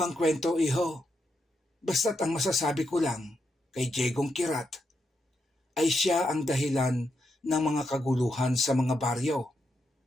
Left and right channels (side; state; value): both; normal; correlation 0.82